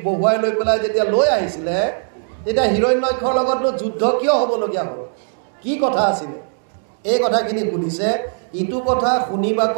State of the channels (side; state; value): left; silent; digital silence